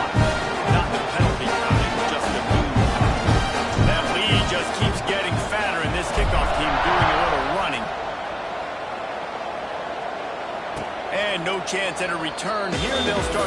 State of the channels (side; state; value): both; identical; correlation 1.00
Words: Not the penalty kind, just the move. That lead just keeps getting fatter, and this kickoff team doing a little running. And no chance at a return here. They'll